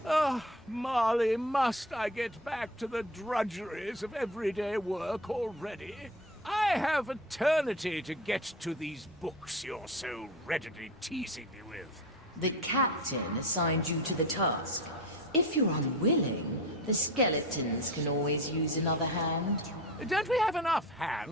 Ah, Marley, must I get back to the drudgeries of everyday work already? I have eternity to get to these books you're so readily teasing me with. The captain assigned you to the task. If you're unwilling, the skeletons can always use another hand. Don't we have enough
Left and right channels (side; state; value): both; normal; correlation 0.31